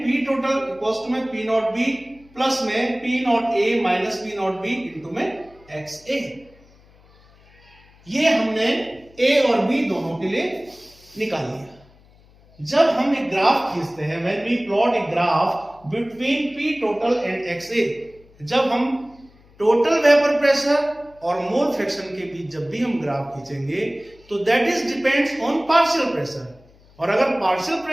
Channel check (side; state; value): left; noise; hum, 28 dB below the sound